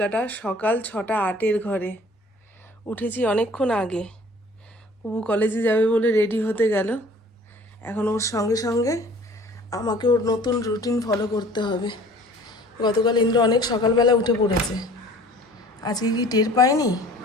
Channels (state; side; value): normal; both; correlation 0.50